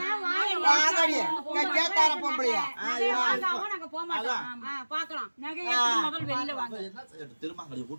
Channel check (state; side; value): inverted; both; correlation -1.00